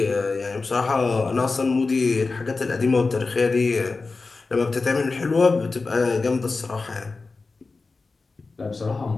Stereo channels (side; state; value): right; quieter; 4.0 dB